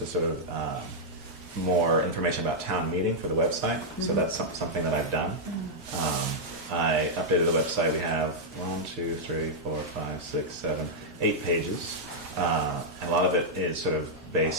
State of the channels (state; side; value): normal; both; correlation -0.06